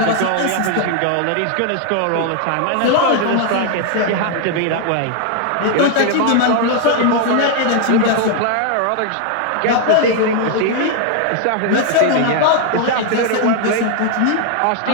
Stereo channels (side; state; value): both; different; correlation 0.00